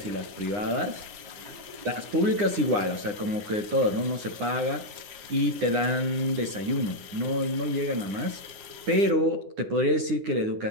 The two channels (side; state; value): left; late; 9.8 ms